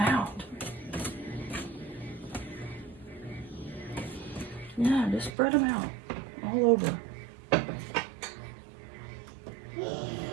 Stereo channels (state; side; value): drops out; left; at 5.3 s